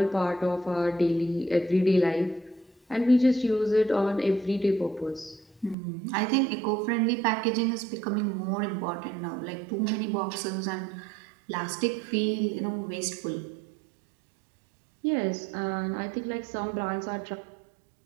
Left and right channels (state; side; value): drops out; left; at 5.8 s